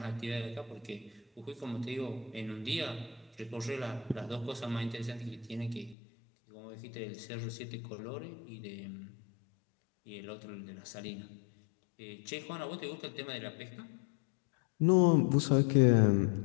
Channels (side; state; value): right; drops out; at 6.0 s